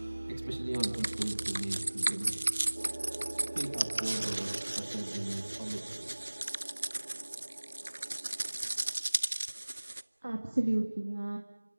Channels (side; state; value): both; inverted; correlation -1.00